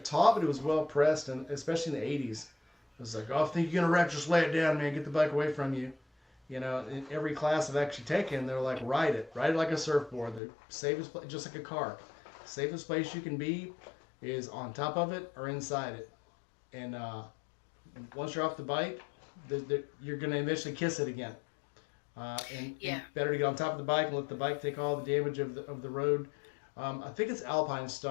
taught, but it was well pressed, and especially in the '80s. It was like, oh, if you think you're gonna wreck, just lay it down, man. Get the bike away from you. You know, in every class I've actually taken, they're like, ride it like a surfboard. The safest place, just like a car. Safest place you can be is on top of it or inside it. And once you're off the bike, you're gonna eventually kiss it again. And Yeah. better to get on top of the bike and let the bike take all the damage of the road. I think it's Alpine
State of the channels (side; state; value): right; drops out; at 10.4 s